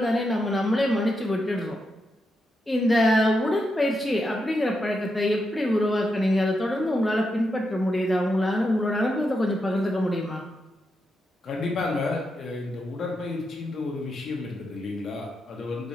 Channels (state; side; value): normal; both; correlation 0.85